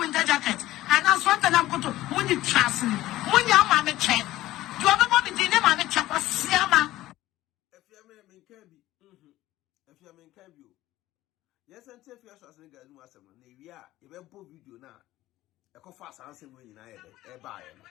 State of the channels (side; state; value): right; quieter; 15.8 dB